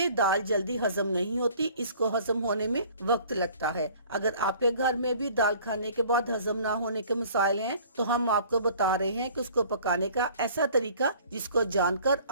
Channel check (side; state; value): both; inverted; correlation -0.51